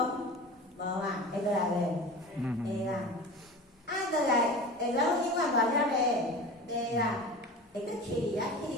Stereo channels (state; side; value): normal; both; correlation 0.34